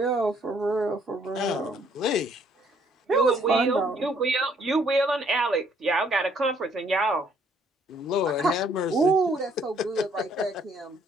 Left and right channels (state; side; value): normal; both; correlation 0.65